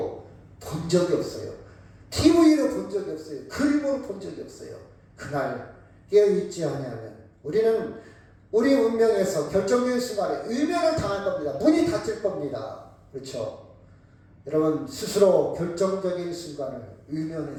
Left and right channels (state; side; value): identical; both; correlation 1.00